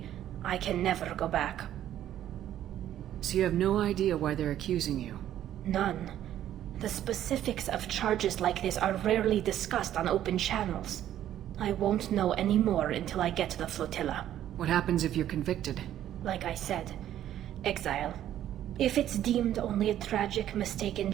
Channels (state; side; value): quieter; left; 11.7 dB